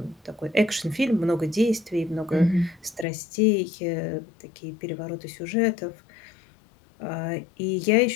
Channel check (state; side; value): drops out; right; at 3.1 s